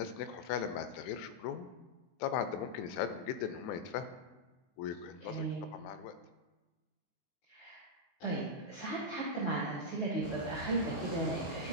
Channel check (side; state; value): right; late; 23 ms